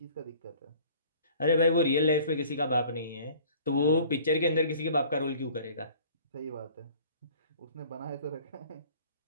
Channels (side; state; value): both; inverted; correlation -0.50